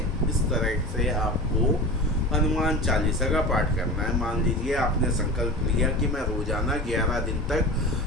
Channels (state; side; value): normal; both; correlation 0.32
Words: इस तरह से आपको हनुमान चालीसा का पाठ करना है। मान लीजिए आपने संकल्प लिया कि मैं रोजाना 11 दिन